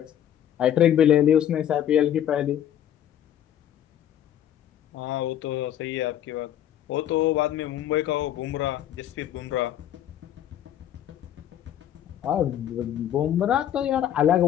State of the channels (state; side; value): quieter; right; 10.7 dB